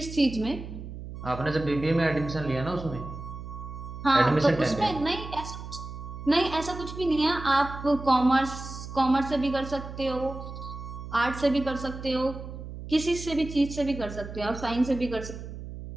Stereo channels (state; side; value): noise; right; hum, 10 dB below the sound